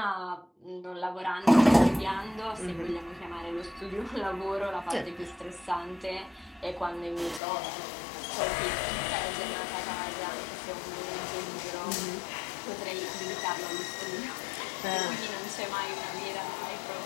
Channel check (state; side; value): drops out; right; at 7.4 s